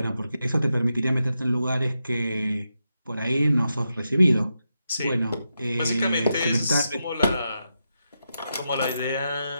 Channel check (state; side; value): inverted; both; correlation -0.87